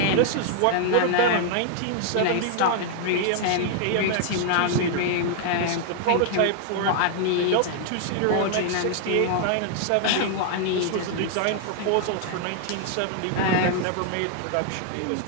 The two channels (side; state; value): both; different; correlation 0.00